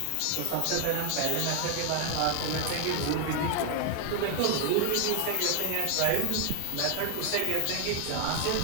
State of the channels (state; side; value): different; both; correlation 0.00